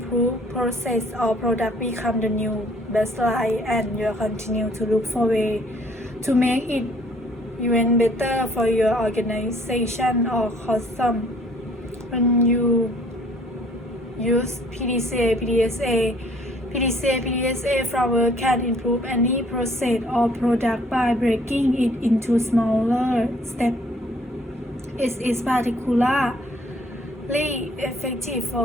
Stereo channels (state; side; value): normal; both; correlation 0.59